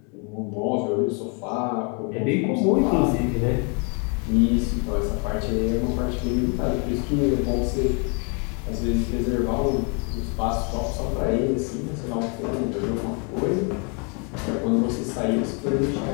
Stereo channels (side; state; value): right; quieter; 35.5 dB